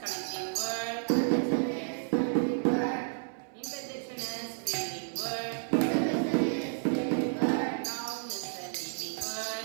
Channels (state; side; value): silent; left; 57 dB below the other